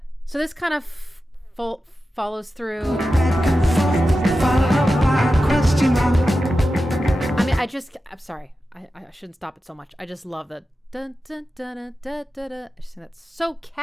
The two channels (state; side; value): normal; both; correlation 0.92